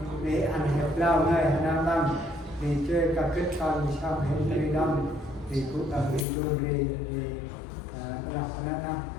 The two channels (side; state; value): right; drops out; at 6.2 s